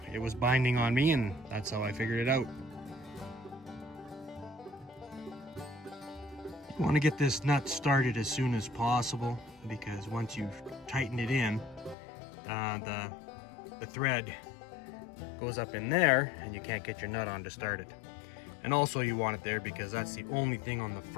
it was binding on me, and that's how I figured it out. You want to get this nut started as soon as possible, because once you've tightened it in, the thread goes up in there and you can't get your nut on to start it. And also you want it there because that's the only thing on the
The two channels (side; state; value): right; drops out; at 12.0 s